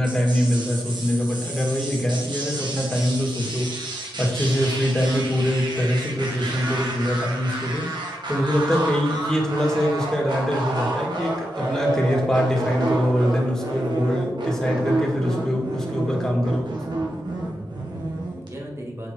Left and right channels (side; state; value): both; normal; correlation 0.86